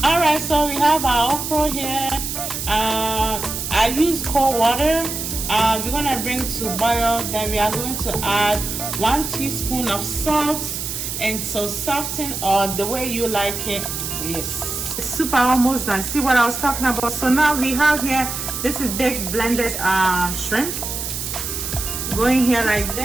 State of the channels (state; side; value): noise; right; hiss, 5 dB below the sound